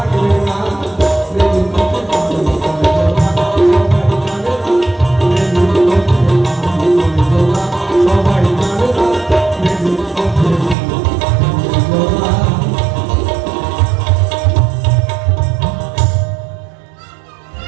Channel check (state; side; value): drops out; left; at 10.8 s